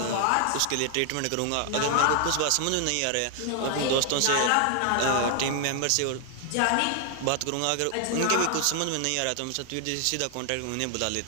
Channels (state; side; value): different; both; correlation 0.00